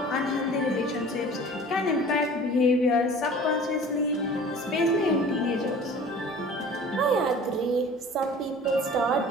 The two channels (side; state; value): both; normal; correlation 0.44